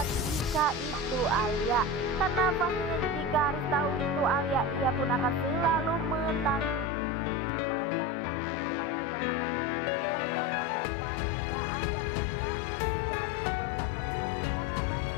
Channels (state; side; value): drops out; right; at 6.9 s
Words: jika itu Alia, karena pastinya jika Haris tahu itu Alia, ia pun akan selalu mendatangi rumah itu dan akan meminta maaf agar pastinya Alia pun tak menjadi beban lagi ya guys ya, karena banyak